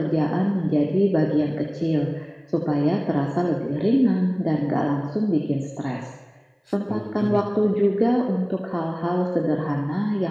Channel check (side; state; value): both; identical; correlation 1.00